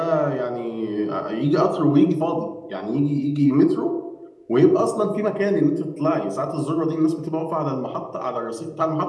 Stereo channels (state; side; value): identical; both; correlation 1.00